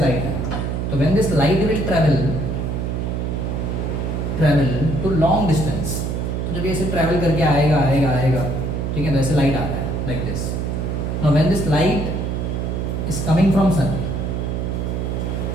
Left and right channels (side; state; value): right; noise; hum, 1 dB below the sound